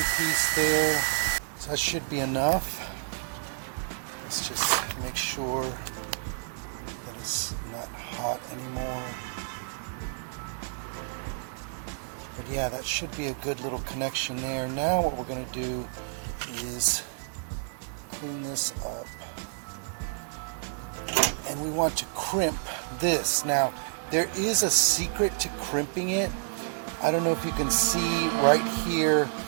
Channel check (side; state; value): left; silent; 58 dB below the other